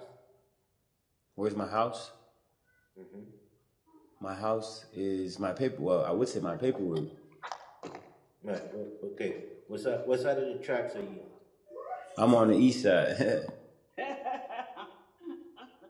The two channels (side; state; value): both; identical; correlation 1.00